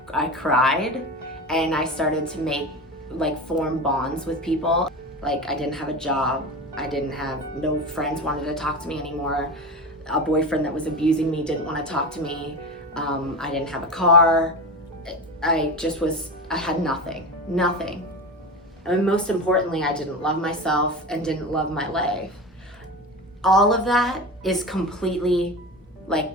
cried, and I started to form bonds with people. I didn't have a job, no friends wanted to talk to me anymore. A boyfriend that was abusing me didn't want to talk to me. I didn't have a car. I had nothing. And most importantly, I didn't love myself and didn't love my life. All of that is completely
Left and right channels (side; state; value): both; normal; correlation 0.26